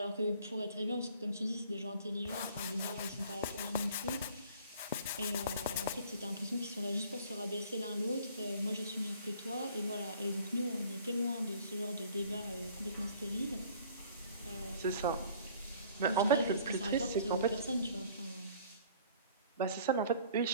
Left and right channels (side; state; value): both; inverted; correlation -0.52